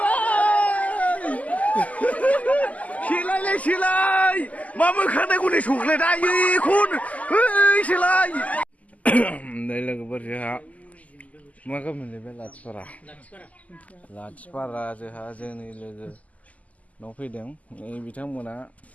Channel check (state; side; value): late; right; 0.073 ms